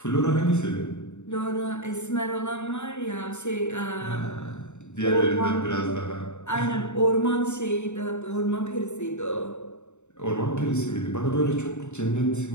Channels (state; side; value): late; right; 0.83 ms